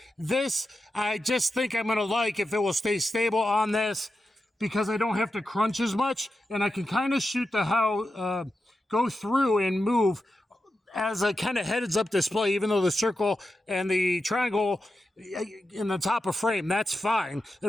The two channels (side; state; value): both; normal; correlation 0.89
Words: This, I just think I'm going to like if it will stay stable on this because I don't have to crunch as much, and I can kind of shoot the go through and move as a kind of heads-up display, even though the circle and the triangle in the top of frame, that's fine.